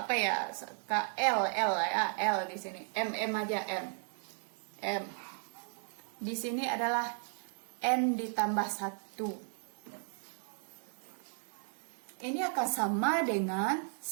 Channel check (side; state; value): left; silent; 54 dB below the other